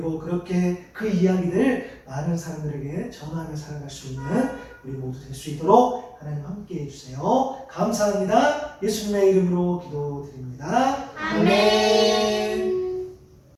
그렇게 그 이야기를 많은 사람들에게 전하며 살아갈 수 있는 우리 모두 될 수 있도록 하나님 함께 해주세요. 감사합니다. 예수님의 이름으로 기도드립니다. 아멘.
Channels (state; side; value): identical; both; correlation 1.00